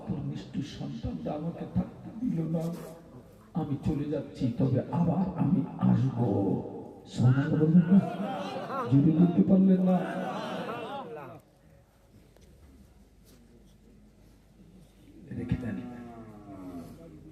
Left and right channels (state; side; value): identical; both; correlation 1.00